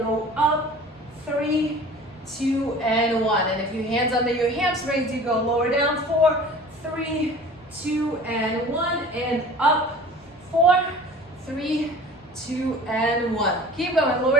up, 3, 2, and 1. And if your hands under your hamstrings, you go lower down 4, 3, 2, and 1, and up 4, 3, 2, and 1. Keep going,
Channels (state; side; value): normal; both; correlation 0.43